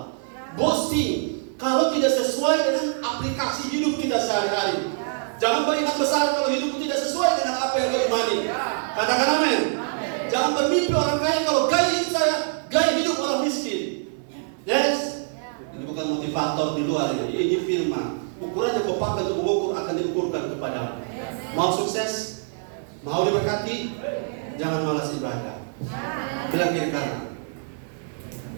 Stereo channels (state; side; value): silent; left; 59 dB below the other